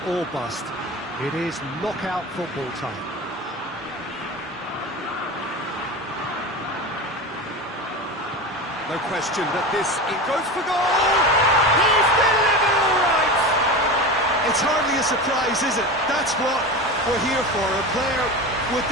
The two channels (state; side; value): normal; both; correlation 0.27